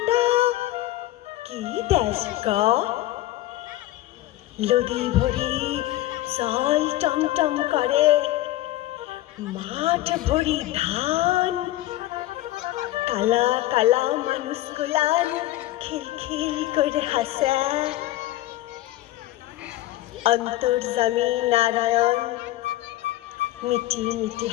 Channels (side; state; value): right; quieter; 15.9 dB